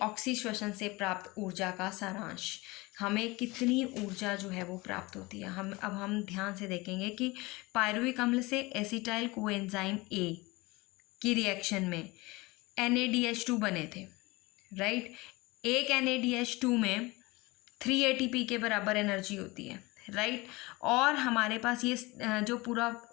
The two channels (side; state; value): right; quieter; 23.0 dB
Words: ऑक्सीश्वसन से प्राप्त ऊर्जा का सारांश, हमें कितनी ऊर्जा जो है वो प्राप्त होती है। हम ध्यान से देखेंगे कि पायरुविक अम्ल से एसिटाइल कोएंजाइम ए की रिएक्शन में NADH2 बने थे, राइट। एक NADH2 में 3 ATP के बराबर एनर्जी होती है, राइट। और हमारे पास ये जो पूरा